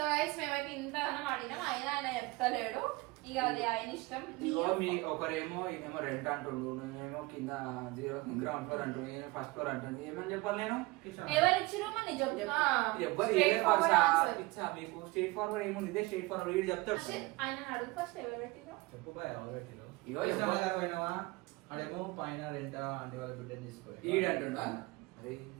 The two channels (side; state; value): left; quieter; 22.6 dB